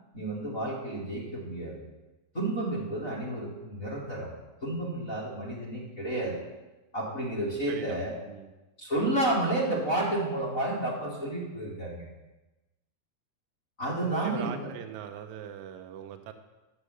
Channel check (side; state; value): right; late; 4.0 ms